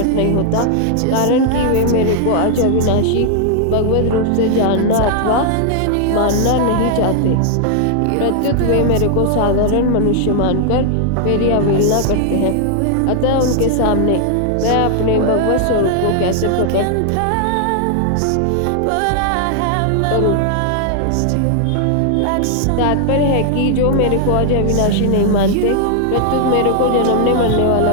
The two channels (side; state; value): both; different; correlation 0.00